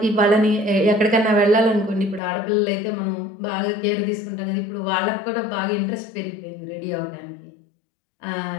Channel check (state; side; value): drops out; right; at 2.2 s